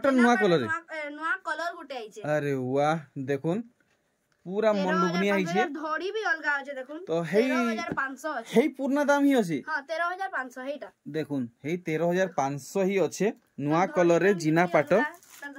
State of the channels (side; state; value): both; identical; correlation 1.00